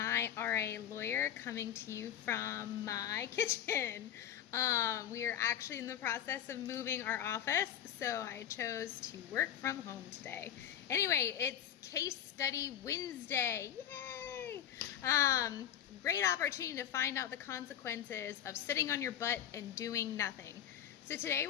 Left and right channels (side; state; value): right; quieter; 10.3 dB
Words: RA Lawyer coming to you from my kitchen. We are actually in the process of moving our office, so I chose to work from home today. Anyway, it's Case Study Wednesday. Yay! Great opportunity to find out the consequences of sitting on your butt and doing nothing. So today